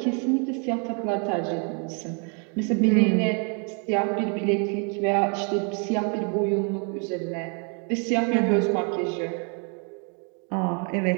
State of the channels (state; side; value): quieter; left; 38.2 dB